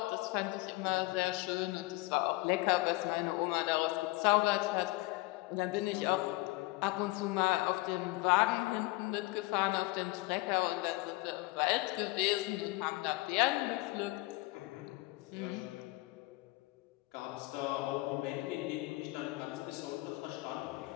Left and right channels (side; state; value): right; quieter; 21.8 dB